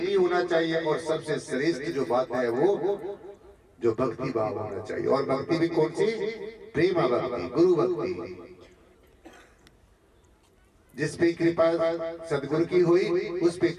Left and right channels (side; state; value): both; identical; correlation 1.00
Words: भी होना चाहिए, और सबसे श्रेष्ठ जो बात है वो जो भक्ति भाव होना चाहिए। और भक्ति भी कौन सी? प्रेम भक्ति, गुरु भक्ति। जिस पे कृपा सदगुरु की हुई उस पे